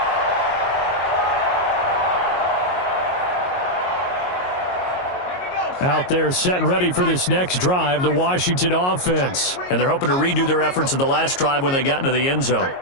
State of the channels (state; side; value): late; right; 22 ms